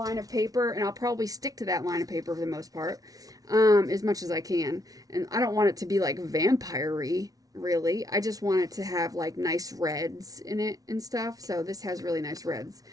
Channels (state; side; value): late; left; 0.18 ms